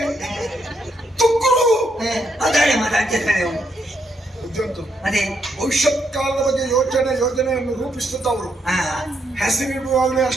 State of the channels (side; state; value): both; normal; correlation 0.77